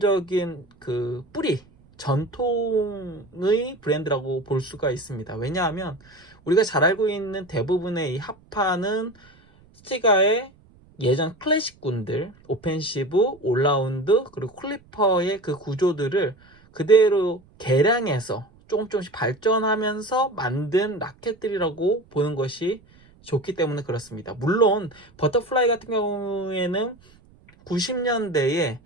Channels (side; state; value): right; noise; rumble, 28 dB below the sound